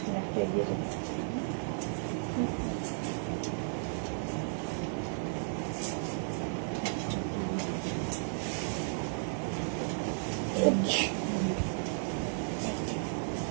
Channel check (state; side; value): silent; left; digital silence